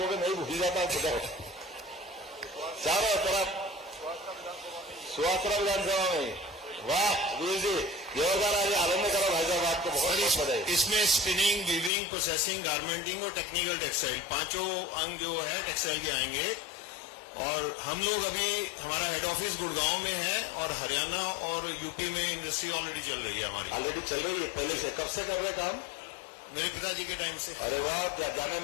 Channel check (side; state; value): right; drops out; at 11.9 s